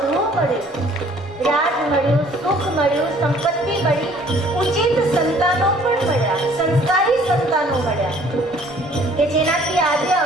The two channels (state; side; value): normal; both; correlation 0.56